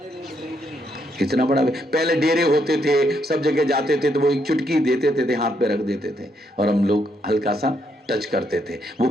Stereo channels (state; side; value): normal; both; correlation 0.76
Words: इतना बड़ा, पहले डेरे होते थे, सब जगह जाते थे तो वो 1 चुटकी देते थे, हाथ पे रख देते थे और हम लोग हल्का सा टच करते थे। वो